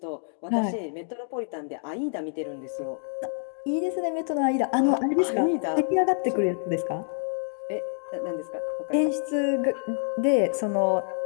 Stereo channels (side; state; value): right; silent; 60 dB below the other